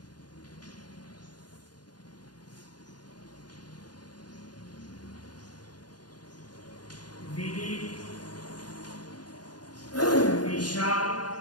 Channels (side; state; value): right; late; 0.70 ms